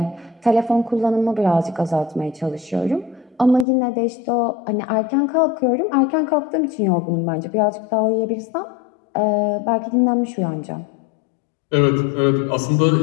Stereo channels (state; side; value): drops out; right; at 3.7 s